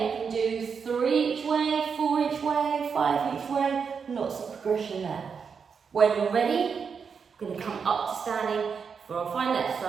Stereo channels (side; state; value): left; quieter; 6.1 dB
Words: you can do 3 each way, 4 each way, 5 each way, lots of progression there. When you're ready, we're going to come up to standing for our final